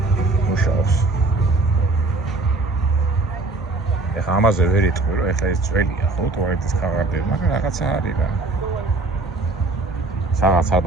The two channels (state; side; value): quieter; left; 3.3 dB